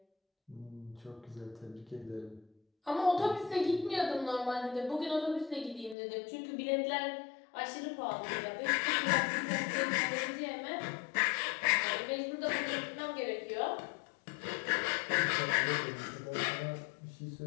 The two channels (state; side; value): drops out; right; at 6.0 s